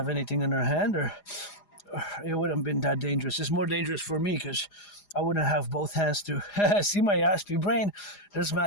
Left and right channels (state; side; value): late; right; 4.9 ms